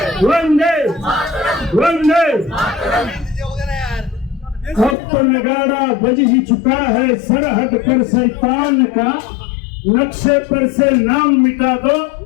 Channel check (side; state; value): right; drops out; at 5.0 s